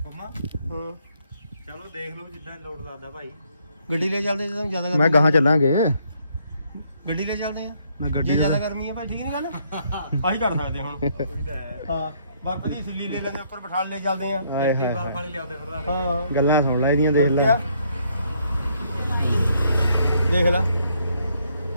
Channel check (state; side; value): inverted; both; correlation -0.70